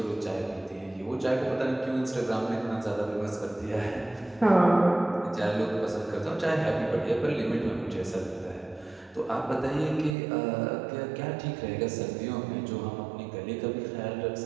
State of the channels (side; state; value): left; drops out; at 10.2 s